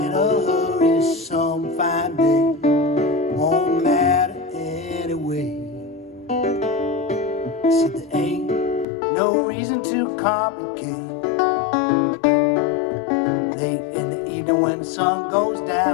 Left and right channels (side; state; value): right; drops out; at 8.8 s